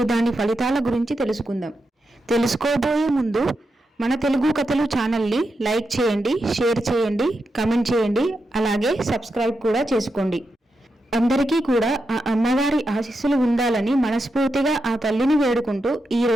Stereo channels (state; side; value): normal; both; correlation 0.87